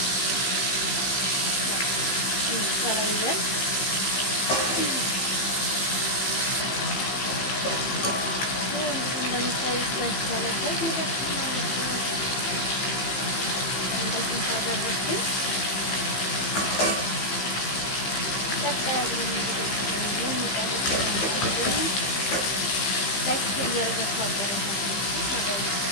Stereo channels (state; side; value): late; right; 15 ms